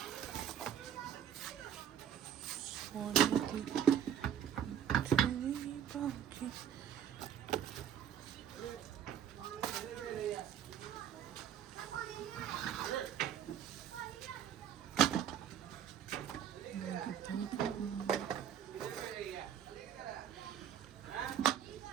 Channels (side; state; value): left; quieter; 9.3 dB